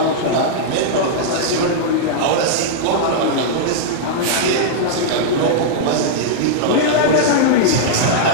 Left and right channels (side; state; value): both; different; correlation -0.02